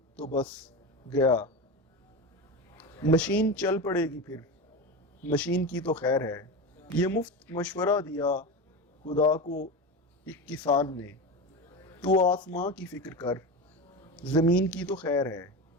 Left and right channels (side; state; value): both; normal; correlation 0.22